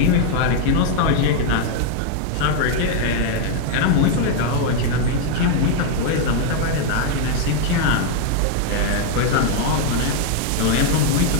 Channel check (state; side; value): different; both; correlation 0.01